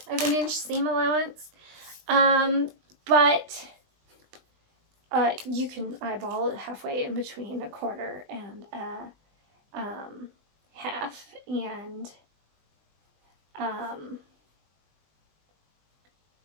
of an inch seam allowance. But you can eyeball it halfway in between 1/4 and a half, and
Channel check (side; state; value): left; late; 20 ms